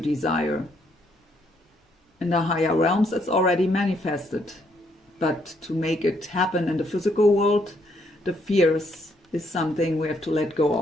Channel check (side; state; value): both; normal; correlation 0.71